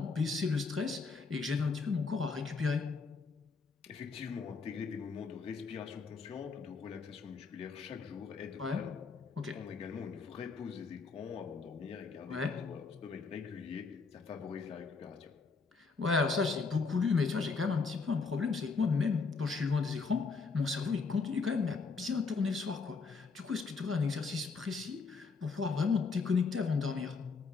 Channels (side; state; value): right; quieter; 4.7 dB